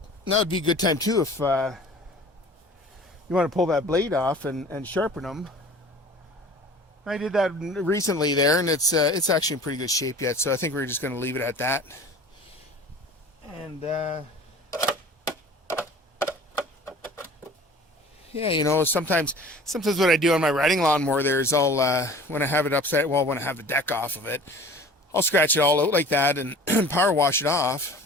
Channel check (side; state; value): both; normal; correlation 0.44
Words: that would be a good time too if you want to pull that blade off and sharpen them. I did that recently there, and it's actually in pretty good shape yet, so I think we're just going to leave it at that. And yeah, you know, sometimes what I do on my riding lawnmower there is I'll when I have it upside, well, when I have the deck off of it, I'll scratch it all out like that and power wash it off,